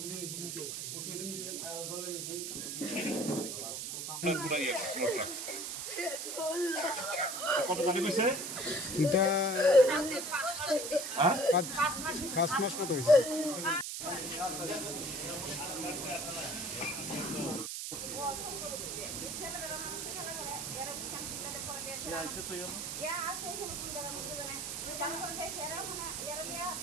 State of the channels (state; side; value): noise; right; hiss, 4 dB below the sound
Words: কত টাকা কইছে এটা 5 মাস মতো হয়েছে